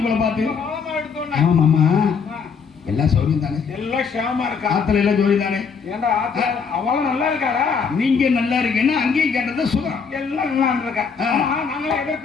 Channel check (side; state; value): right; quieter; 5.8 dB